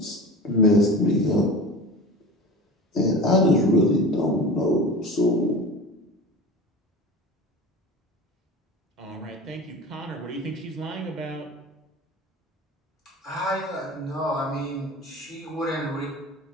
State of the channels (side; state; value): both; normal; correlation 0.33